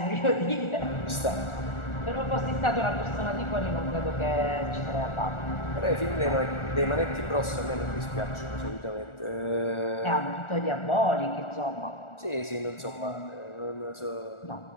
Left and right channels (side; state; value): right; late; 1.4 ms